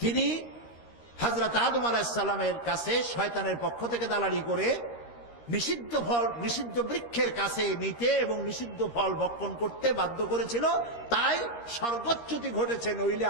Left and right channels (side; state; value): right; late; 13 ms